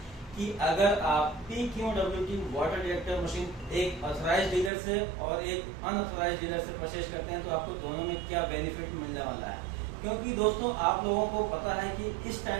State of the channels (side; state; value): left; drops out; at 4.7 s